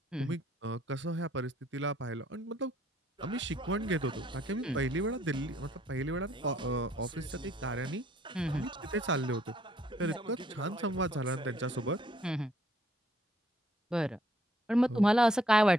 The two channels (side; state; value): both; normal; correlation 0.66